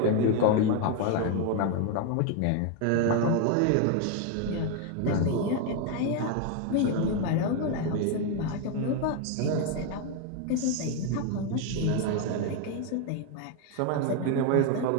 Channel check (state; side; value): different; both; correlation 0.01